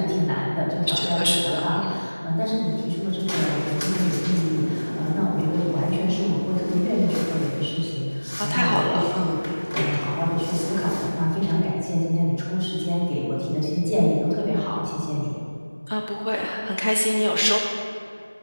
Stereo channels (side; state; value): both; inverted; correlation -1.00